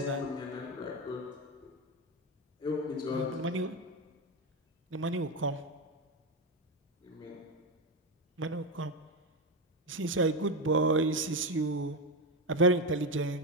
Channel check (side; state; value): both; normal; correlation 0.11